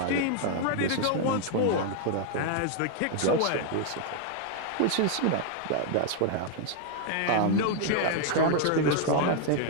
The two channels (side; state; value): both; different; correlation 0.00